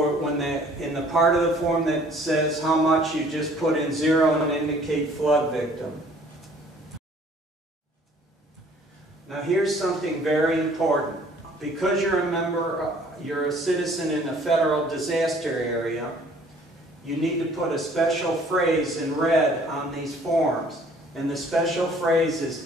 the part of the form that says how much, you just put in 0 and indicate flood victim. Now here's something very important. Because you're a member, you're a citizen in a federal disaster area, you need to put a special phrase in red on these forms. And the special phrase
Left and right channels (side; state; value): both; normal; correlation 0.56